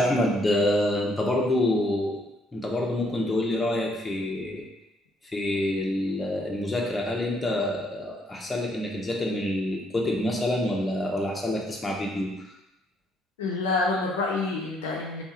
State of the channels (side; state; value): both; normal; correlation 0.70